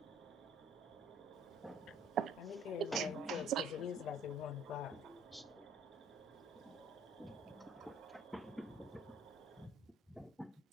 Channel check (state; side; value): normal; both; correlation 0.58